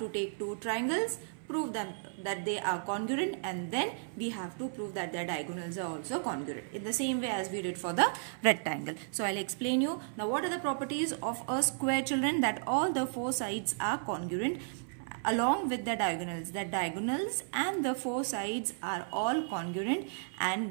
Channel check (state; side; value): silent; left; 55 dB below the other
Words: take 2 triangles, prove them that they are congruent, and then we have to prove that their diagonals are also congruent in the same way as we did for the rectangle. So I'll explain you. Now what are the properties of a square, children? That all the 4 sides are congruent along with the diagonals. The diagonals and the 4 sides are all congruent,